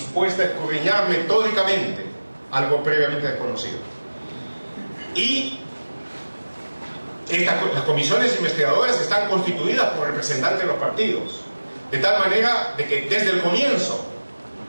a escudriñar metódicamente algo previamente desconocido. Y las comisiones investigadoras están constituidas por representantes de los partidos, de tal manera de que desde el comienzo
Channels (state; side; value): inverted; both; correlation -1.00